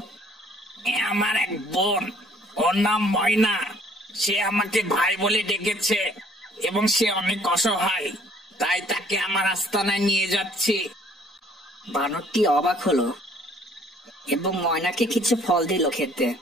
এ আমার এক বোন, ওর নাম ময়না। সে আমাকে ভাই বলে ডেকেছে এবং সে অনেক অসহায়, তাই তাকে আমার আস্তানায় নিয়ে যাচ্ছি। বানরটি অবাক হলো এবং ময়নাকে কিছু ফল দিল খেতে।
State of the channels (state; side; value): normal; both; correlation 0.59